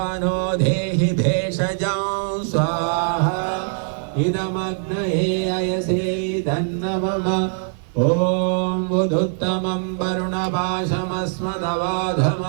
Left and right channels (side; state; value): left; silent; 56 dB below the other